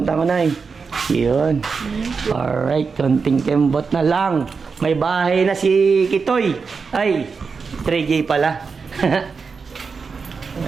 tango, Nay. Yun. Alright, konting kembot na lang. May bahay na si Kitoy. Ay, 3J pala.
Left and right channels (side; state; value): left; quieter; 5.1 dB